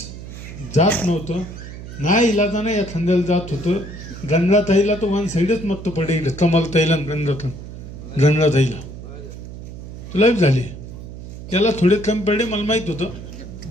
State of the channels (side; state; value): right; noise; hum, 12 dB below the sound